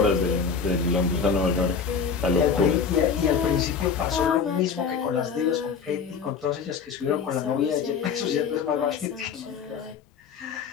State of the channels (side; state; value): right; quieter; 6.0 dB